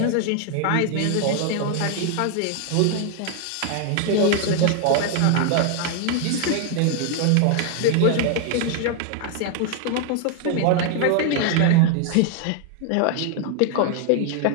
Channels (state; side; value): different; both; correlation 0.00